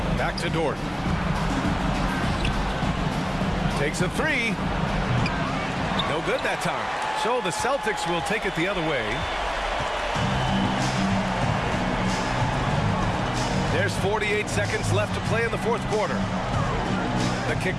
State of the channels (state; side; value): identical; both; correlation 1.00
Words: Back to Dort. Takes a 3. No good that time. So the Celtics will take it the other way. There's 48 seconds left to play in the fourth quarter. The kick